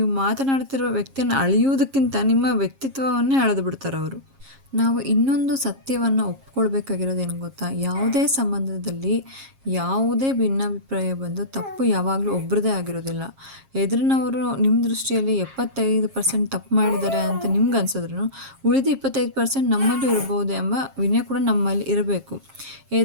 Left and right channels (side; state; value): left; late; 7.4 ms